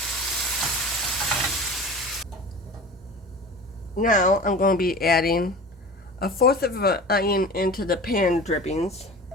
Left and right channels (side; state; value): both; normal; correlation 0.37